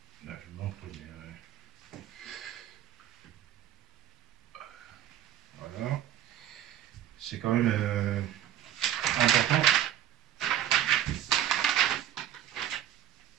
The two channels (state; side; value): quieter; left; 11.3 dB